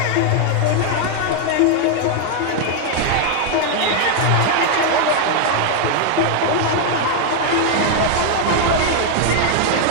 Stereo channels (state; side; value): different; both; correlation 0.00